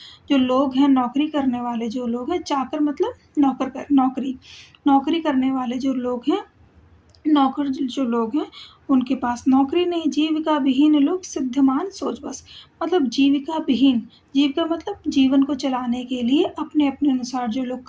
जो लोग हैं, नौकरी करने वाले जो लोग हैं, चाकर मतलब नौकरी करने वाले जो लोग हैं, नौकर जो लोग हैं, उनके पास नौकरी नहीं। जीविका विहीन लोग सिद्धमान सोच बस, मतलब जीविका विहीन, जीविका मतलब जीवन को चलाने के लिए अपने अपने अनुसार जो लोग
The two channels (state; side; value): identical; both; correlation 1.00